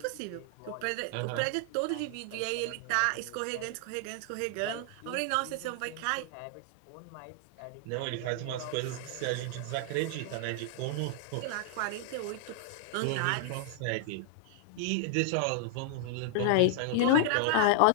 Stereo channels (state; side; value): different; both; correlation -0.01